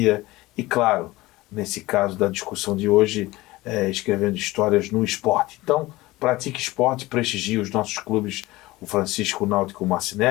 e, claro, nesse caso da discussão de hoje, escrevendo histórias no esporte. Então, pratique esporte, prestigie os nossos clubes, o Francisco Náutico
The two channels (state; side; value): quieter; right; 19.3 dB